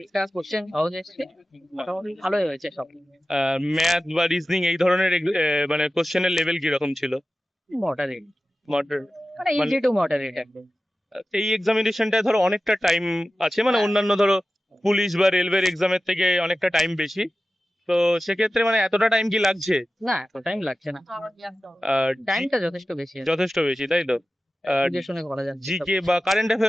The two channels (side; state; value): both; normal; correlation 0.95